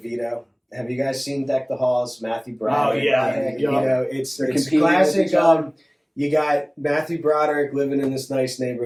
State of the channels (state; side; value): identical; both; correlation 1.00